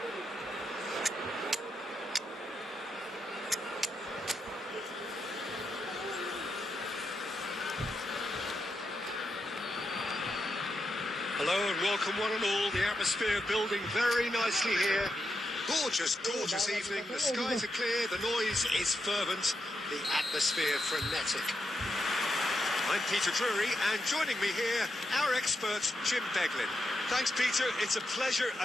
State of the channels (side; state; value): both; normal; correlation 0.85